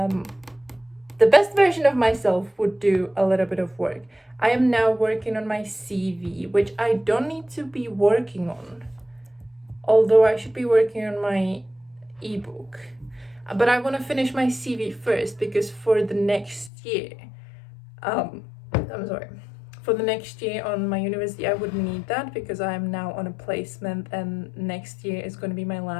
best version of myself would do a little bit of work. I am now working on my CV, which I don't need to be working on, although I should be working on my ebook. But I want to finish my CV first because for the next year, for the next year on my university, I wouldn't need that because I am now on a placement and next year is going to be my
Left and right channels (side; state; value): right; drops out; at 16.7 s